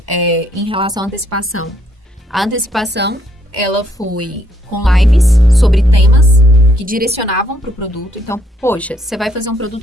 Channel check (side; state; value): both; normal; correlation 0.71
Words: em relação à antecipação. A antecipação, ela foi com lives sobre temas que direcionavam pro produto. Então, poxa, você vai fazer um